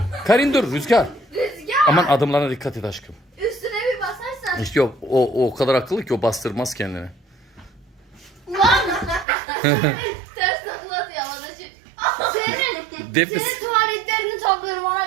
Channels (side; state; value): left; drops out; at 9.2 s